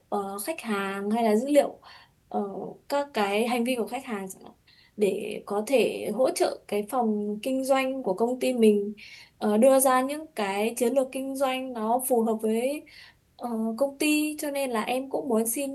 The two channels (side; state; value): both; identical; correlation 1.00